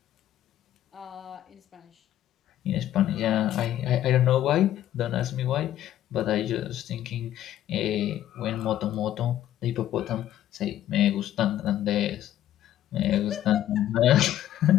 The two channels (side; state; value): right; quieter; 12.4 dB